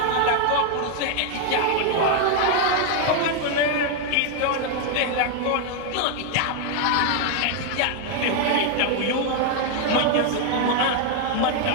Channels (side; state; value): both; different; correlation 0.01